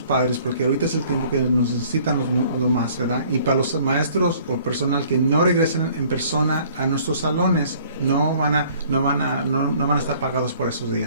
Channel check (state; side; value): inverted; both; correlation -0.55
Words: padres, porque ahorita es el tiempo que nos necesitan lo más, ¿verdad? Y para los maestros o personal que no regresen en persona a nuestros salones, no van a estar pagados por esos